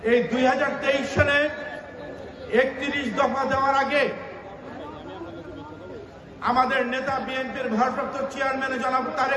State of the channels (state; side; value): identical; both; correlation 1.00